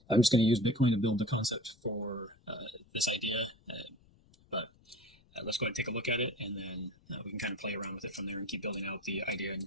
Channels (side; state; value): left; noise; rumble, 30 dB below the sound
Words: I'm just going to use Bitcoin to build the concept for this idea, but let's go ahead and take a look at it, and then we can kind of play around with it from there and keep building out the idea and